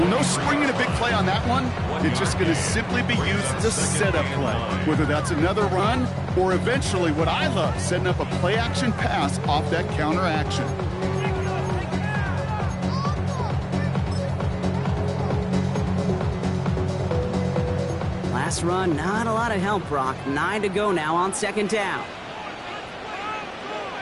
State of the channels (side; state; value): both; identical; correlation 1.00